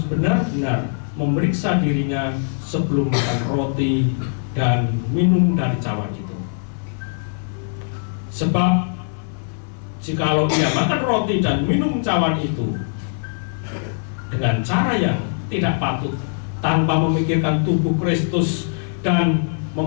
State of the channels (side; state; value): right; silent; 59 dB below the other